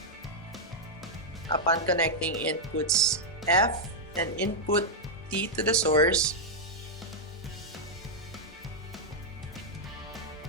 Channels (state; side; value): normal; both; correlation -0.04